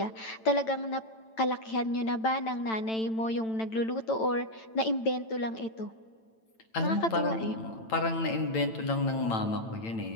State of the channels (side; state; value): right; late; 9.0 ms